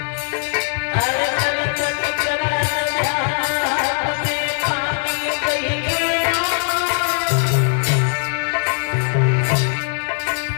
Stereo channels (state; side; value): silent; right; 60 dB below the other